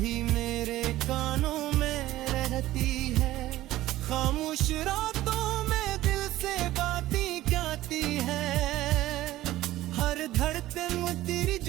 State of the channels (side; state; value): left; quieter; 15.6 dB